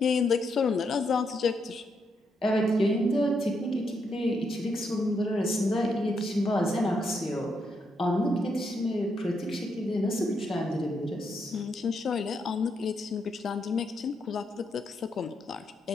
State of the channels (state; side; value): normal; both; correlation 0.79